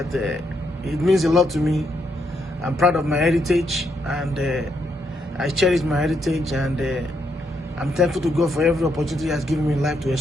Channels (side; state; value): both; normal; correlation 0.77